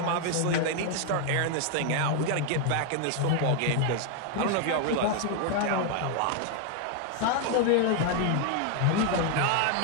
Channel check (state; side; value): different; both; correlation 0.00